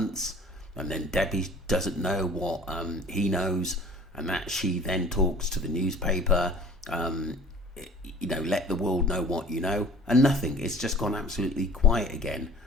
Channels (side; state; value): both; normal; correlation 0.48